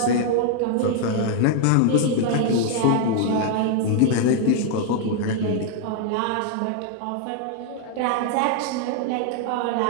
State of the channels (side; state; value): both; different; correlation 0.00